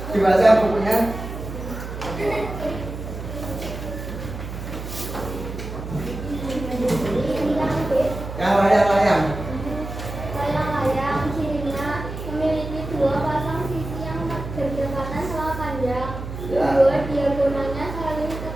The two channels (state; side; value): noise; right; hum, 8 dB below the sound